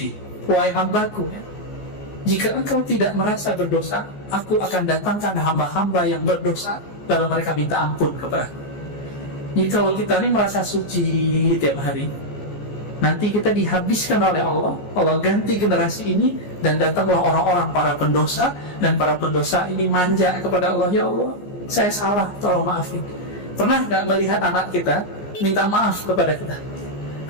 wahai hambaku, jika engkau tidak merasa berdosa, aku akan datangkan hamba-hamba yang berdosa lalu mereka minta ampun kepada aku. Jadi kalau kita ini merasa suci tiap hari, nanti kita dihabiskan oleh Allah. Allah ganti generasi ini dan datanglah orang-orang para pendosa, dan para pendosa ini manja kepada Allah, ya Allah, saya salah, tolong maafin. Pernah nggak melihat anak kita minta maaf kepada kita,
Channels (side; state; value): right; late; 14 ms